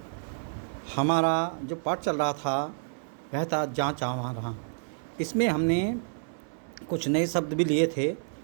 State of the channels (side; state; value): left; silent; 58 dB below the other